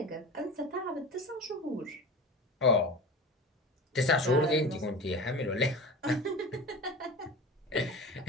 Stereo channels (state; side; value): normal; both; correlation 0.32